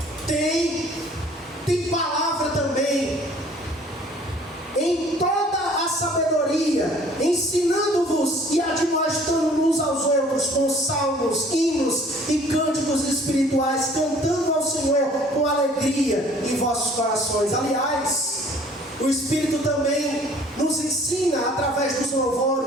tem palavra também. Em toda a sabedoria, ensinando-vos e admoestando uns aos outros com salmos, hinos e cânticos espirituais, cantando ao Senhor com alegria em vossos corações. Aliás, o Espírito também nos ensina através dos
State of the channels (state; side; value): normal; both; correlation 0.54